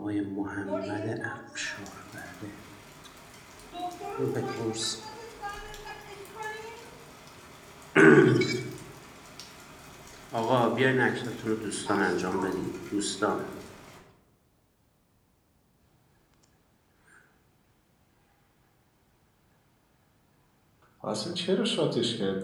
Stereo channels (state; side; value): identical; both; correlation 1.00